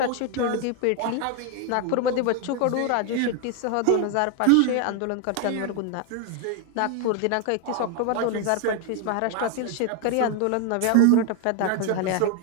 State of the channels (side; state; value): both; different; correlation 0.01